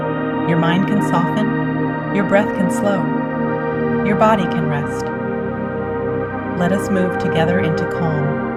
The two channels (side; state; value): both; identical; correlation 1.00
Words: Your mind can soften, your breath can slow, your body can rest. Let us move together into calm.